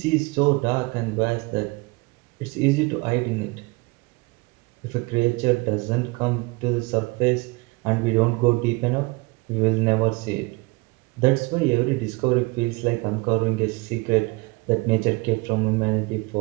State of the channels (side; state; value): left; quieter; 25.2 dB